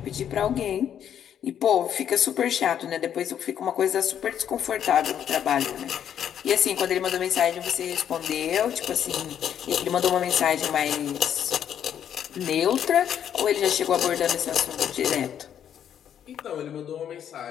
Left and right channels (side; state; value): right; quieter; 9.4 dB